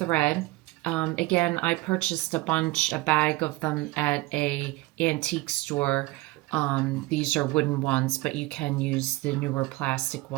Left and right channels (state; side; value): quieter; left; 20.6 dB